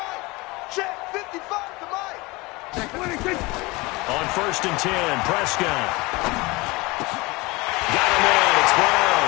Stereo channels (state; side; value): quieter; right; 23.6 dB